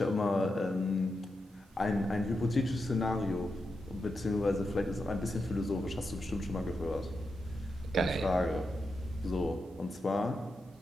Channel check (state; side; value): normal; both; correlation 0.87